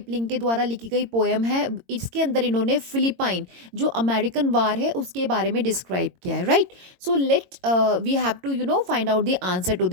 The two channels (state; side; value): late; left; 22 ms